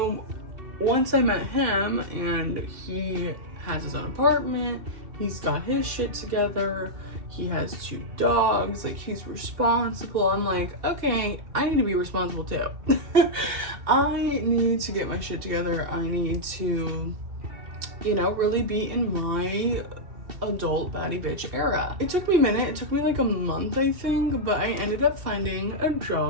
once I met him and he has his own apartment, he's got his shit together, he has 2 dogs, like he's responsible. I'm like, okay, I need to be responsible too. I need to get my shit together. I need to, you know, really be in my adult baddie bitch era. It took me a minute. It took me like a month, I think, but I ended up finding a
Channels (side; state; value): left; late; 2.7 ms